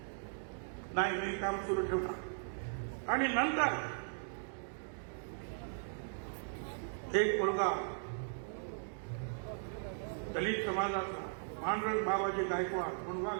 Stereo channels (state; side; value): silent; left; digital silence